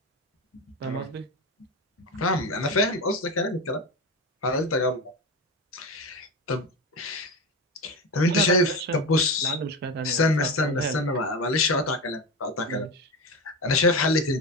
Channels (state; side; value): normal; both; correlation 0.21